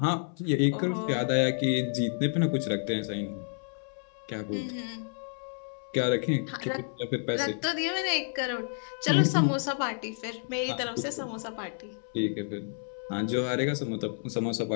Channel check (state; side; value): silent; right; 58 dB below the other